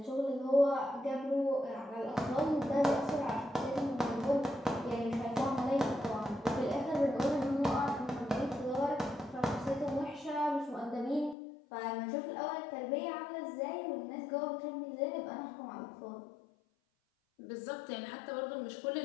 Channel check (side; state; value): right; drops out; at 11.4 s